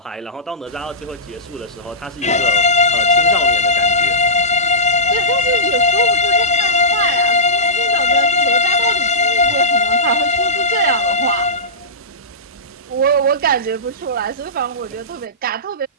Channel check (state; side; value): normal; both; correlation -0.19